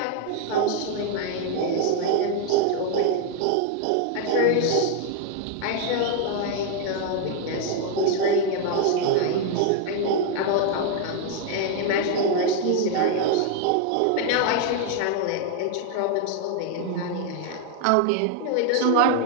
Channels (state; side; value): different; both; correlation 0.00